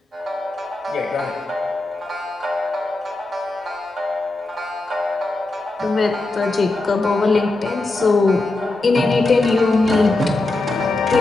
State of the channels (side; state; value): right; quieter; 3.1 dB